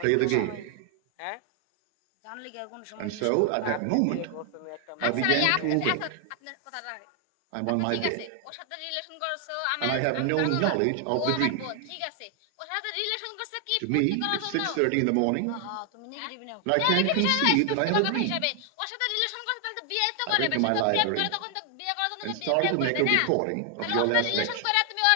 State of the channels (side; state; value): both; different; correlation 0.00